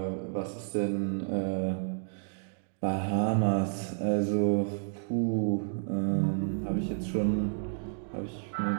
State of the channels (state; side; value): silent; left; digital silence